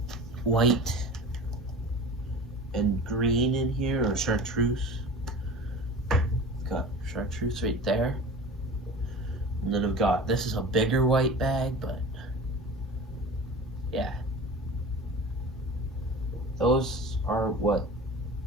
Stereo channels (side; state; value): both; normal; correlation 0.37